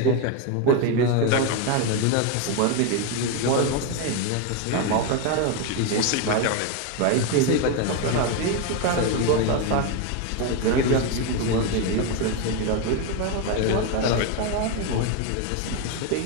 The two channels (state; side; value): different; both; correlation 0.02